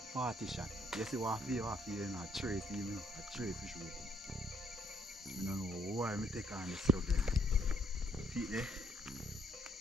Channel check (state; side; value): normal; both; correlation 0.69